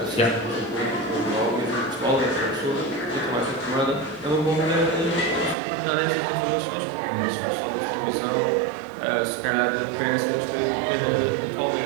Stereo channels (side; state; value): left; drops out; at 5.6 s